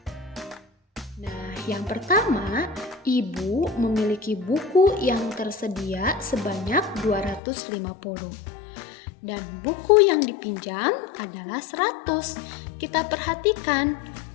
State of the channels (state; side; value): drops out; right; at 7.4 s